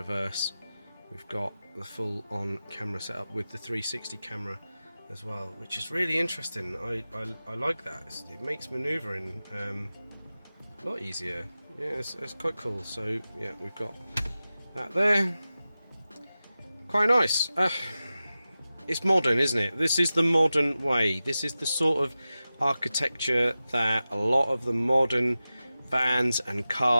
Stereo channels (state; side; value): inverted; both; correlation -0.94